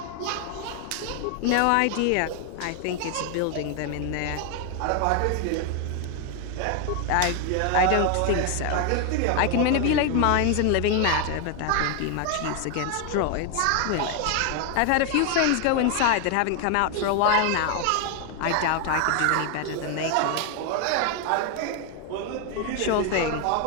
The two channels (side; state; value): both; different; correlation 0.01